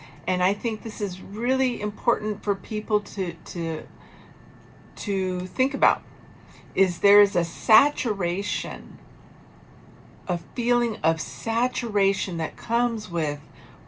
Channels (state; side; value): identical; both; correlation 1.00